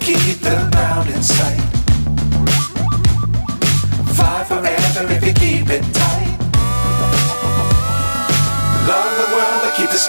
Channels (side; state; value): both; inverted; correlation -1.00